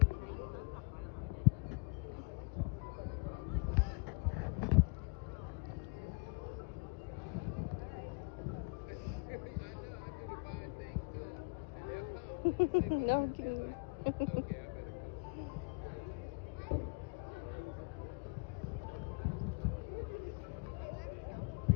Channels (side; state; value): right; quieter; 32.1 dB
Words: No, I'm kidding.